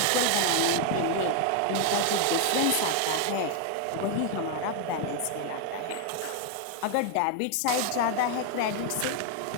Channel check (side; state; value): both; different; correlation 0.00